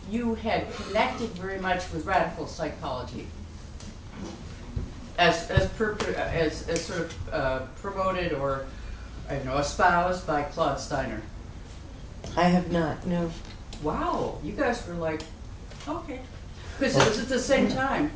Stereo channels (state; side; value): identical; both; correlation 1.00